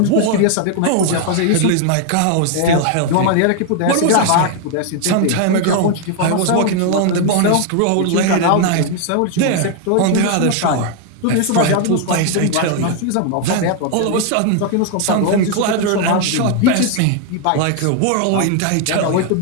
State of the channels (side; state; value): both; different; correlation 0.00